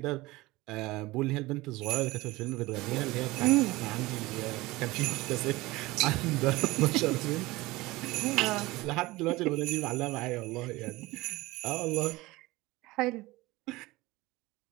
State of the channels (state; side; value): quieter; left; 20.4 dB